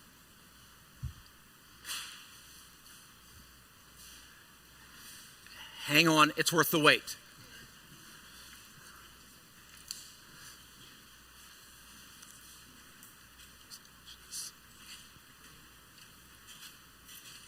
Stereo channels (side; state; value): both; identical; correlation 1.00